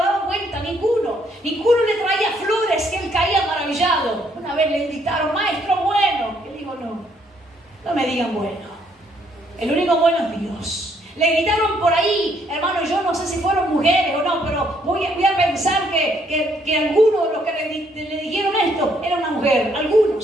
vuelta, ninguno. Ninguno le traía flores que él caía maravillado. Una vez le gritaron: maestro bueno. Él dijo: no me digan bueno. El único bueno es Dios. Le gritaron por ahí, hermano, yo no sé si fueron mujeres o no, pero voy a pensar que algunos de los que le dijeron esto era una mujer,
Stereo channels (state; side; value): normal; both; correlation 0.69